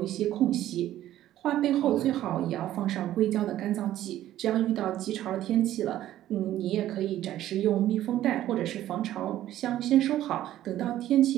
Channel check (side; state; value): left; quieter; 13.2 dB